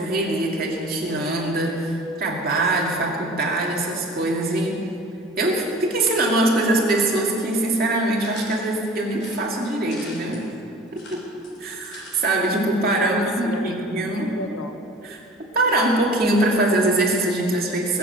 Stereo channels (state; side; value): normal; both; correlation 0.44